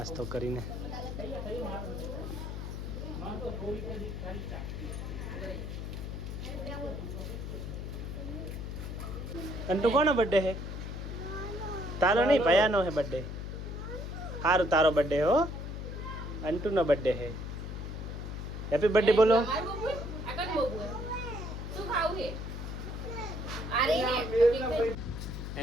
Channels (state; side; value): noise; left; hum, 6 dB below the sound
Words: કરીને અંટુ કોનો બર્થડે હે? તારો નહીં, ભયાનો હે બર્થડે. સારું, તારો બર્થડે હો. અંટુનો બર્થડે હે. હેપી બર્થડે બોલો.